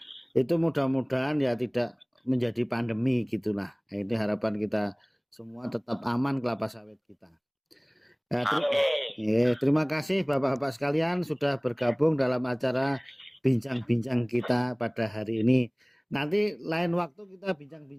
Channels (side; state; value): both; identical; correlation 1.00